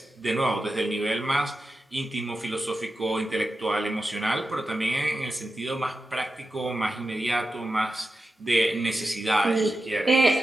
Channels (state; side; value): normal; both; correlation 0.92